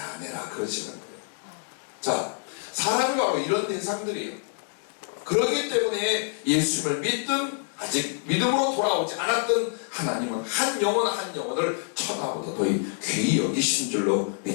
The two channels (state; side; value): silent; right; 60 dB below the other